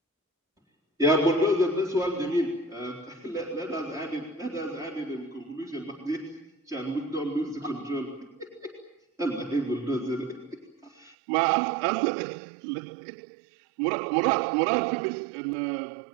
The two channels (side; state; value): left; drops out; at 11.2 s